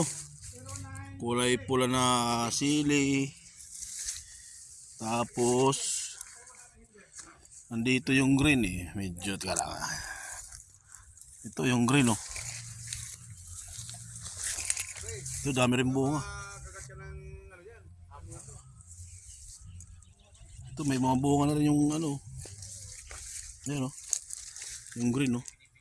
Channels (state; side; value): identical; both; correlation 1.00